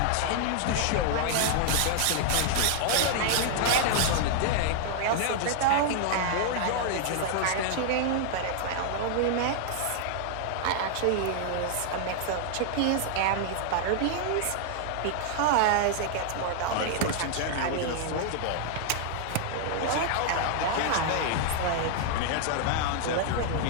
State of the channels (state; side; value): different; both; correlation -0.01